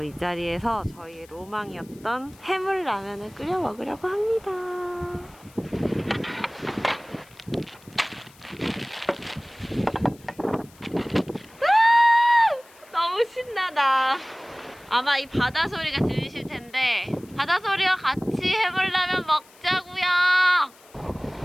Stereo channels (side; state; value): left; noise; hiss, 26 dB below the sound